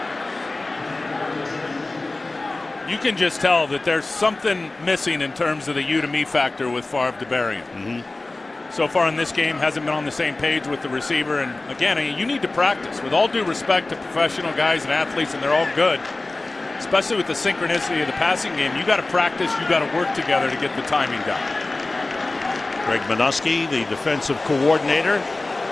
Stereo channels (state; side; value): quieter; right; 3.1 dB